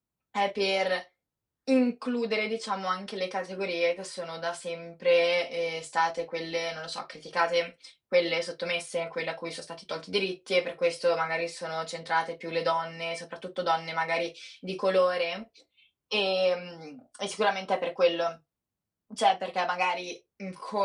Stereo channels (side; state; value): both; identical; correlation 1.00